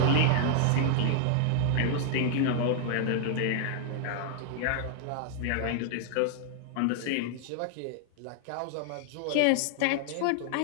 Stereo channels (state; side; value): different; both; correlation 0.00